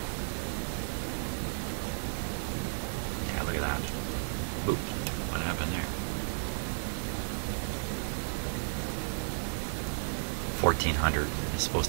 Yeah, look at that. Oop, what happened there? 1,400 is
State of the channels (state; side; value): silent; left; digital silence